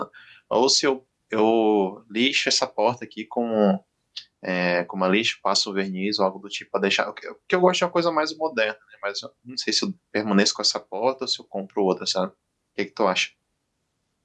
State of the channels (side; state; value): both; identical; correlation 1.00